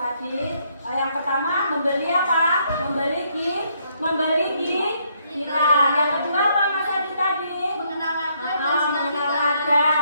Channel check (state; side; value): inverted; both; correlation -0.71